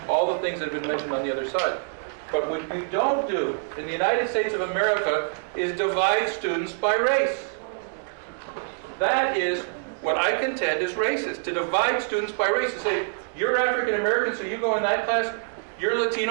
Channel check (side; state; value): left; silent; digital silence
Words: all the things that have been mentioned on the other side. But what we don't do in the United States of America is divide students by race. That is what I contend is racist, to divide students by race, to say, you're African American, so you go in that class, you're